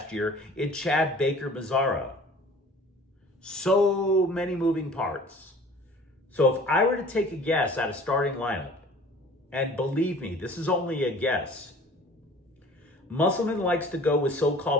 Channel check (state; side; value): normal; both; correlation 0.47